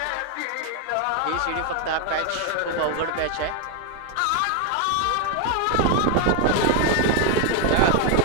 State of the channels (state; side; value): different; both; correlation 0.01